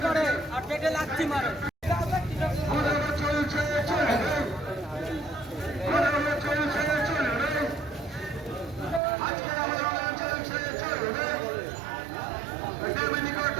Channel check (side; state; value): left; drops out; at 9.0 s